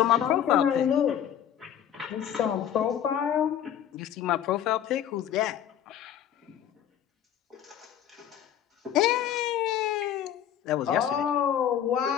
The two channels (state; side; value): quieter; right; 9.9 dB